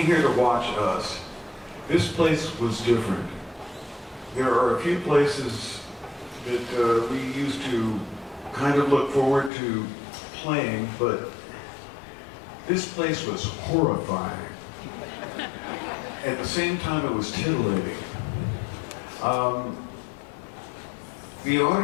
here to watch us. This place was different. There are a few places that we used to kind of look forward to playing, but this place was horrifying. At the same time, it was titillating. The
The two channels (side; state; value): right; drops out; at 9.5 s